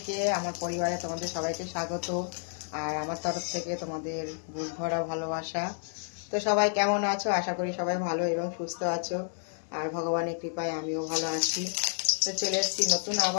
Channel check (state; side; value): silent; right; 58 dB below the other